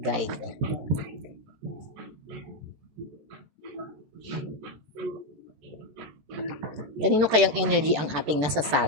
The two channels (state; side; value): late; left; 13 ms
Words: Kanino kayang energy ang ating